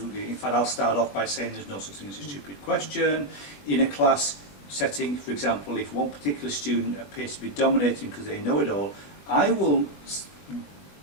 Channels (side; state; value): right; late; 21 ms